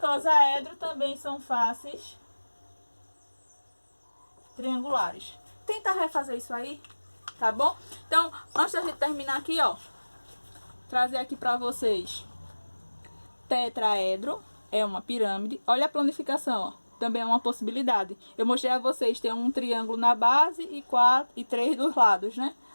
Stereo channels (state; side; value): inverted; both; correlation -1.00